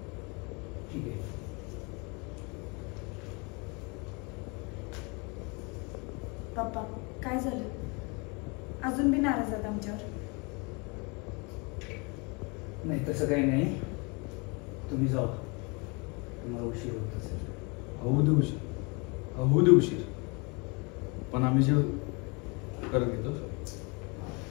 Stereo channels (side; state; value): right; quieter; 30.2 dB